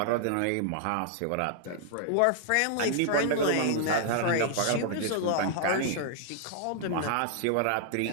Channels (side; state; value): both; different; correlation -0.01